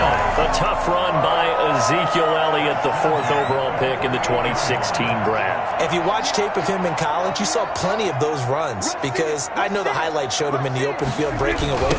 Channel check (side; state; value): both; identical; correlation 1.00